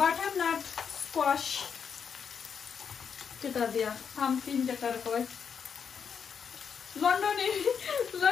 স্কোয়াশ কেটা দিয়া পাম্পকিন যেটার কয়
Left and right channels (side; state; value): right; quieter; 6.9 dB